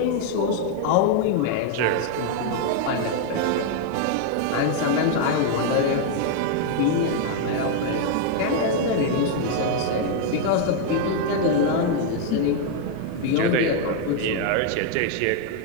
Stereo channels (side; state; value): both; different; correlation 0.00